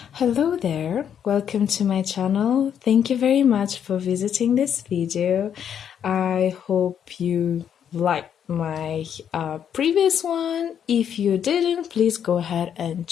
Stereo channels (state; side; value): quieter; right; 8.7 dB